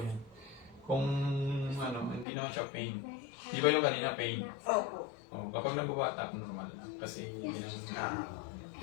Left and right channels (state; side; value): drops out; right; at 2.2 s